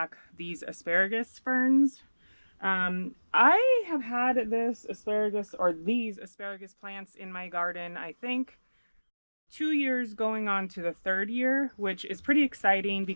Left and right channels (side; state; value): both; inverted; correlation -1.00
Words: these asparagus ferns. I have had this asparagus or these asparagus plants in my garden, I think 2 years going on to the third year, which is pretty exciting